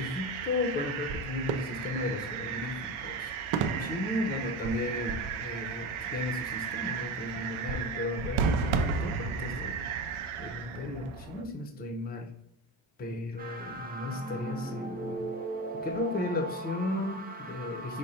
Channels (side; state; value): both; normal; correlation 0.24